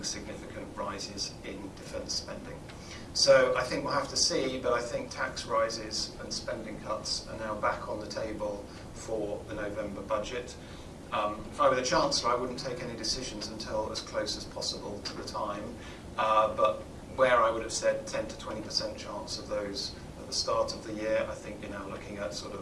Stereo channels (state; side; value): identical; both; correlation 1.00